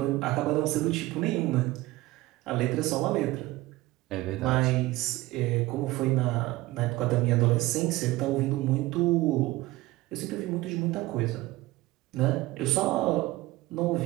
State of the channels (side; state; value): left; quieter; 18.9 dB